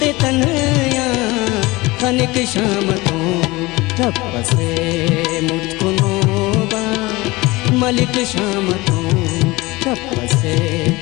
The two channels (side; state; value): right; quieter; 21.7 dB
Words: तनया खनिक शामतो तपसे मुतकुनोबा मलिक शामतो तपसे